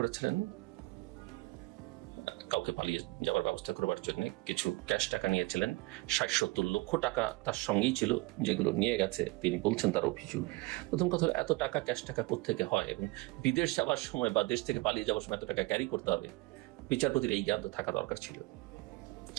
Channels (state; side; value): quieter; left; 23.3 dB